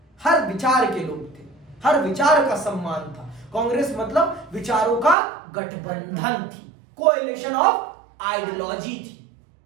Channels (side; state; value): left; drops out; at 5.2 s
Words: हर विचार के लोग थे, हर विचार का सम्मान था। कांग्रेस मतलब विचारों का गठबंधन थी, कोएलिशन ऑफ आइडियोलॉजी थी।